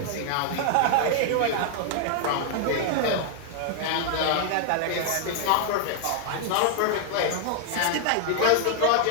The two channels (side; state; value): both; different; correlation -0.01